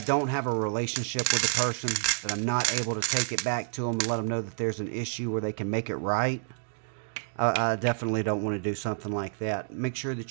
don't have a relationship with the person, that I'm not able to take it back to them and let them know that there's an issue where they can make it right. I definitely don't want to do something like that. Make sure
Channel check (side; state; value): left; silent; digital silence